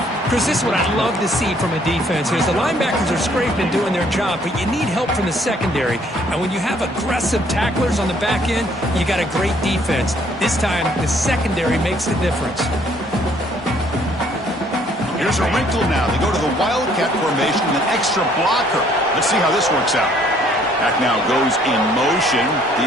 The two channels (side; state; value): both; normal; correlation 0.63